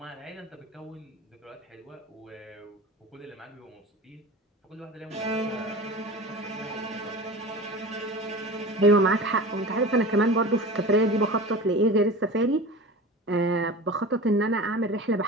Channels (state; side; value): normal; both; correlation 0.33